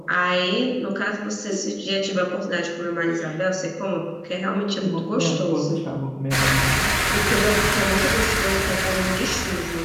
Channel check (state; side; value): identical; both; correlation 1.00